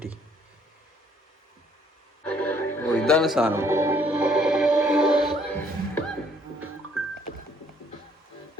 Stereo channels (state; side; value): normal; both; correlation 0.64